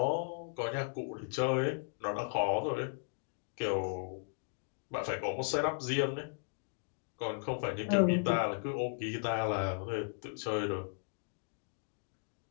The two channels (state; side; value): silent; right; digital silence